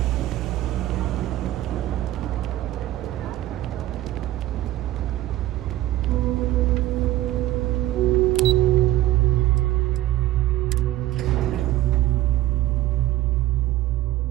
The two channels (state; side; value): quieter; left; 15.2 dB